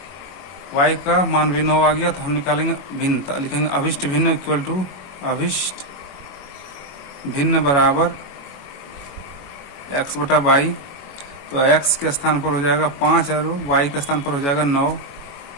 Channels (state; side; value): late; right; 21 ms